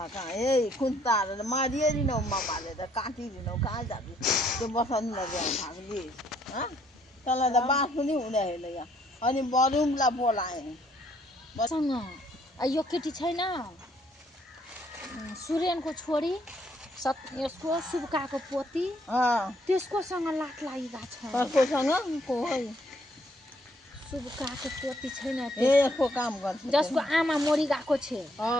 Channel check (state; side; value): normal; both; correlation 0.67